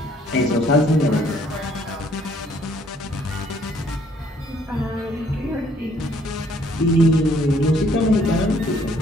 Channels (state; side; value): normal; both; correlation 0.63